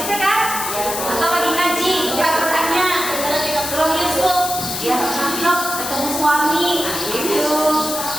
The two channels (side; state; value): left; noise; hiss, 4 dB below the sound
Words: kan? Atau lagi ngaji, buka Qurannya, Surah Yusuf, dia cakep, ketemu suami, gitu.